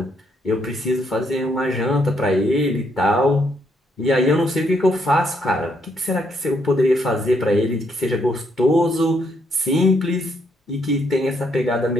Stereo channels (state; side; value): normal; both; correlation 0.73